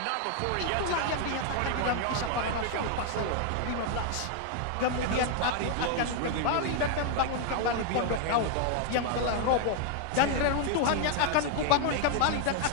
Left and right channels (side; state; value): both; different; correlation 0.00